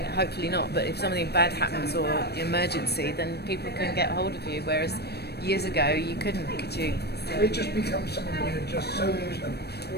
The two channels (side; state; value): right; late; 0.47 ms